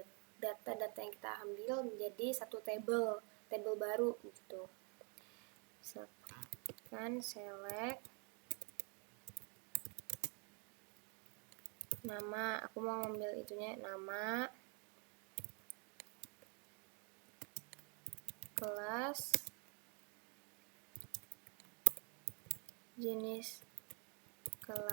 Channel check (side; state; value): left; quieter; 36.3 dB